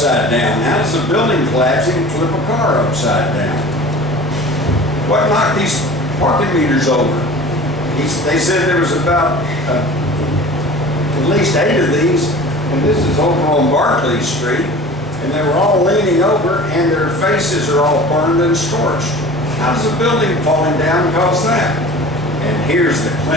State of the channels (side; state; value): both; normal; correlation 0.41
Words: down? How does a building collapsing flip a car upside down? What knocked these parking meters over? They said there was about at least 8 of these, and this is over on Barclay Street, and they were all leaning over, and their faces are all burned and scorched. How does a building falling down cause that? And here's the